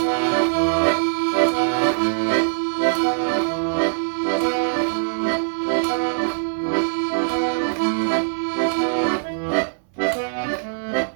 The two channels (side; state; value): left; silent; 64 dB below the other